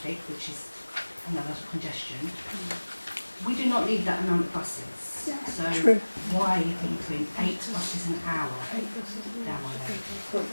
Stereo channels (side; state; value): both; inverted; correlation -1.00